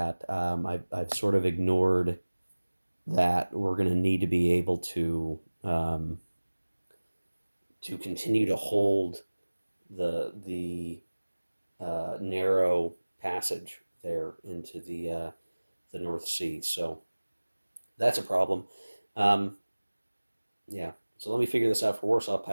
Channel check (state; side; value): inverted; both; correlation -1.00